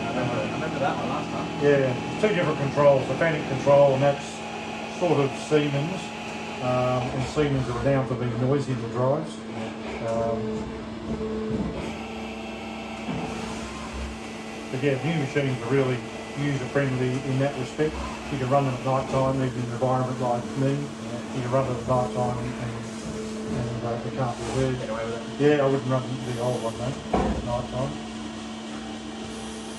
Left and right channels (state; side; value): identical; both; correlation 1.00